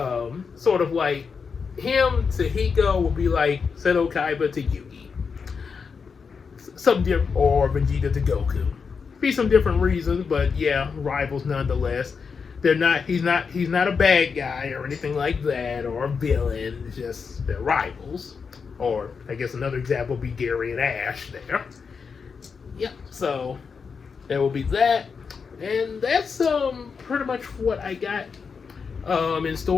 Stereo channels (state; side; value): quieter; right; 5.6 dB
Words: sort of like him to Hiko will be like Seto Kaiba to Yugi. Or Vegeta to Goku. Be some different reasons, but yeah, rivals nonetheless. He's not a bad guy or anything like that, or a villain. It's just they're rivals. Or I guess another example would be Gary and Ash there. Yep. So there will be that, and that's pretty much what I got in